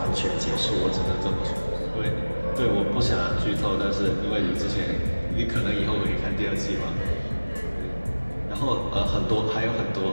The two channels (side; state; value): both; inverted; correlation -1.00